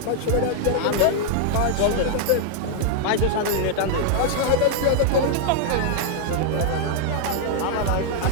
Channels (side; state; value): both; different; correlation 0.00